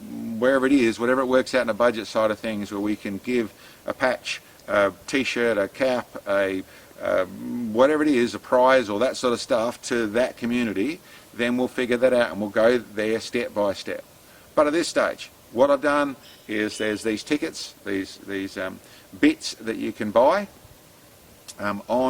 wherever it is, whatever it works out in a budget side of things, where we can give a patch, a t-shirt, a cap, whatever it is, a prize or that sort of stuff to that community, then we'll figure that out and we'll go there step by step. But at this stage, what I've done is there's these tickets, these bits that you can buy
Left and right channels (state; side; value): identical; both; correlation 1.00